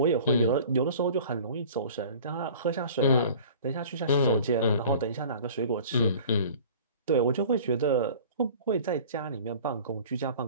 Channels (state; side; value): inverted; both; correlation -0.44